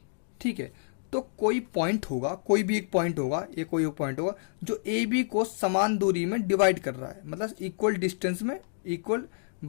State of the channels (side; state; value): right; silent; digital silence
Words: ठीक है, तो कोई पॉइंट होगा, कोई भी एक पॉइंट होगा, ये कोई एक पॉइंट होगा जो ए बी को समान दूरी में डिवाइड कर रहा है, मतलब इक्वल डिस्टेंस में, इक्वल